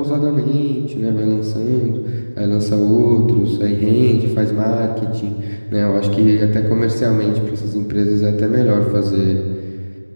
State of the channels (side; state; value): both; inverted; correlation -1.00